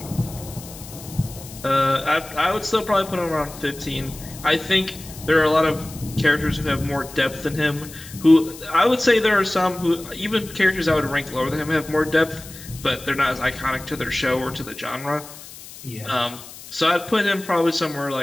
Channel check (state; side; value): noise; left; hiss, 16 dB below the sound